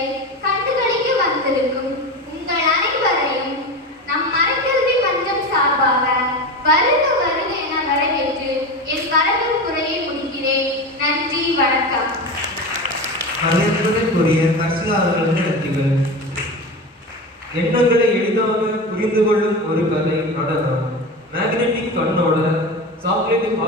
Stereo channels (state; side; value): normal; both; correlation 0.25